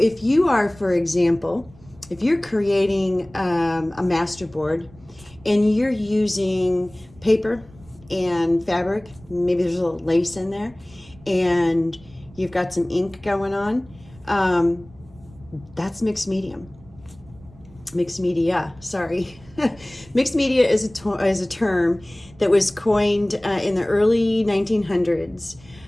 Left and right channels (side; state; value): right; noise; rumble, 24 dB below the sound